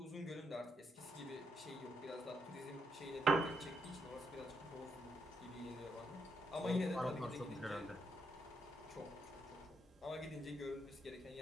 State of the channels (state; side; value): normal; both; correlation 0.78